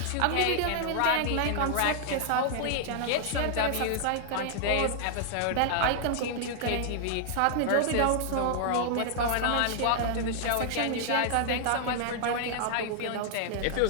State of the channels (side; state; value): both; different; correlation -0.01